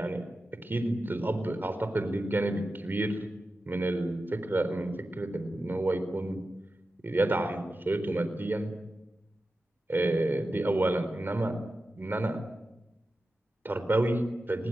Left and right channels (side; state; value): both; normal; correlation 0.92